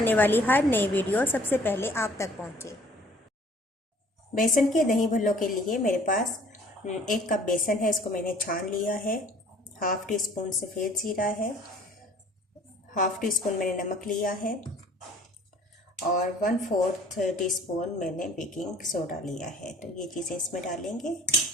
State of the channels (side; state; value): both; normal; correlation 0.53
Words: वाली हर नई वीडियो सबसे पहले आप तक पहुँचे। बेसन के दही भल्लों के लिए मेरे पास 1 कप बेसन है, इसको मैंने छान लिया है। हाफ़ टी स्पून सफ़ेद ज़ीरा है, हाफ़ टी स्पून मैंने नमक लिया है और 1/4 टीस्पून मैंने बेकिंग सोडा लिया है। तो ये चीज़ें इसमें डालेंगे।